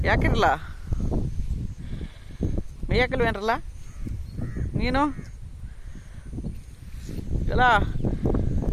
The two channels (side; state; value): both; identical; correlation 1.00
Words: ಯಾಕಿರಲ್ಲ ಮೇಯಕಲ್ವೇನ್ರಲ್ಲ ನೀನು ಎಲ್ಲ